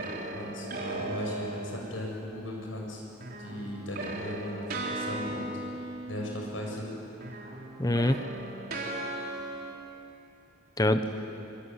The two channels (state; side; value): normal; both; correlation 0.52